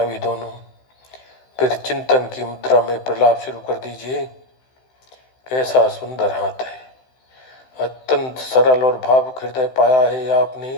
दोनों। फिर चिंतन की मुद्रा में प्रलाप शुरू कर दीजिए। कैसा सुंदर हाथ है, अत्यंत सरल और भावुक हृदय पाया है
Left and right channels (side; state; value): right; late; 16 ms